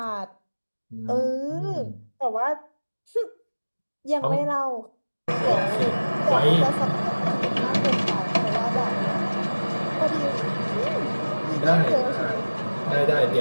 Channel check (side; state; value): both; inverted; correlation -1.00